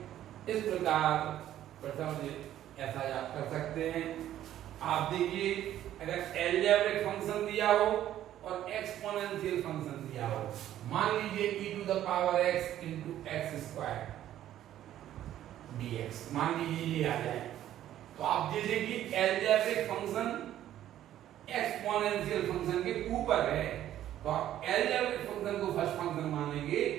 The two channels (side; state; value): left; quieter; 12.2 dB